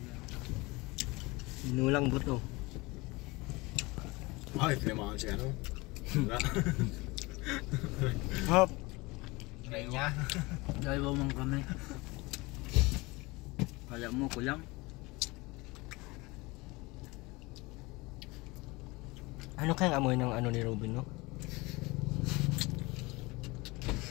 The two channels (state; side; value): quieter; right; 23.6 dB